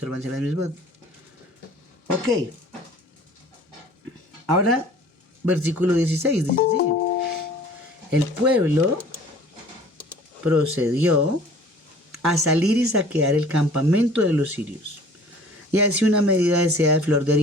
de las mismas. Ok. Ahora, versículo 16 dice así. El pueblo procedió a salir y saquear el campamento de los sirios. Y así una medida de seda de flor de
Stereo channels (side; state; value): both; normal; correlation 0.49